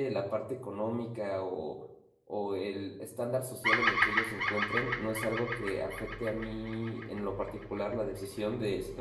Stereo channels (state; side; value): identical; both; correlation 1.00